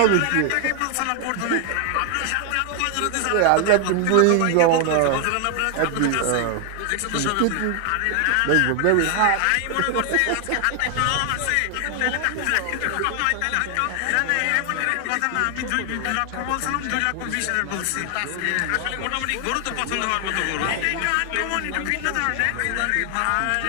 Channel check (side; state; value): both; different; correlation 0.00